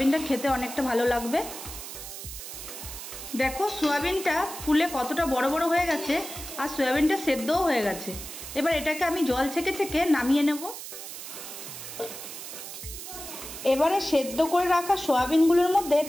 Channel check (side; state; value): right; noise; hiss, 10 dB below the sound